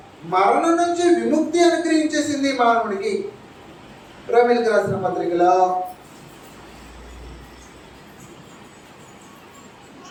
మరణం నుంచి విముక్తి అనుగ్రహించేసింది మానవుడికి. రోమీయులకు రాసిన పత్రికలో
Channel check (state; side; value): identical; both; correlation 1.00